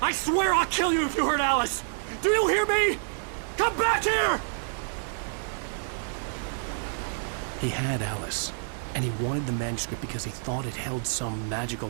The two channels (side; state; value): left; silent; digital silence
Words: I swear I'll kill you if you hurt Alice! Do you hear me? Come back here! He had Alice, and he wanted the manuscript because he thought it held some magical